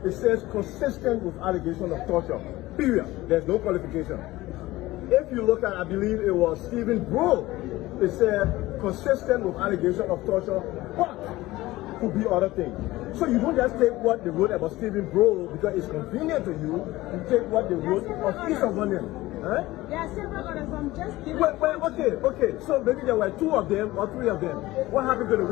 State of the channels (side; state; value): right; quieter; 18.1 dB